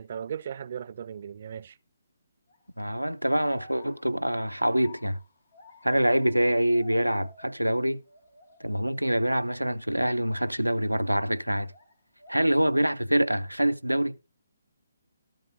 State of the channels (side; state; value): both; inverted; correlation -0.98